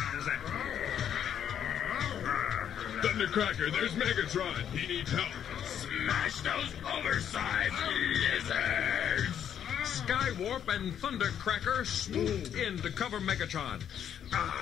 Thundercracker, there's Megatron. He needs help. Smash those oversized lizards! Skywarp and Thundercracker swooped in to cover Megatron.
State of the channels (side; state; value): right; quieter; 9.2 dB